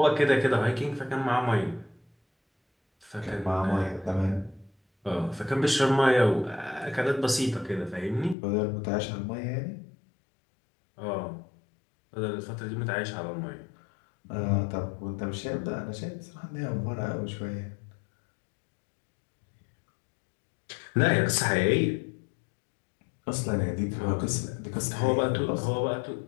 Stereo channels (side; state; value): right; drops out; at 8.3 s